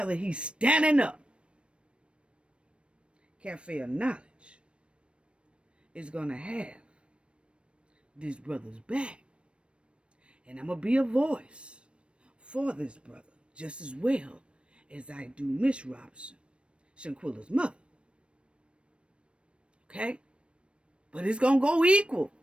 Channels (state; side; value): late; left; 0.059 ms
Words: he's standing up. Cafe of Knowledge is going to have this brother's back. And I'm going to be a voice for this brother just as well as I do Miss Robinson, Shanquella's mother. Okay? But it's going to go equal.